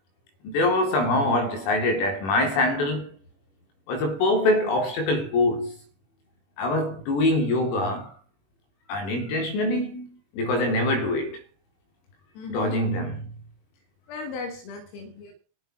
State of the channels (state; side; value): late; right; 21 ms